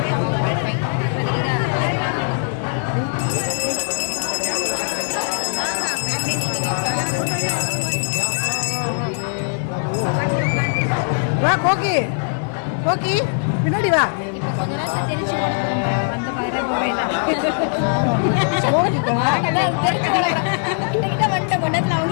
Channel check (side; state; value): right; silent; digital silence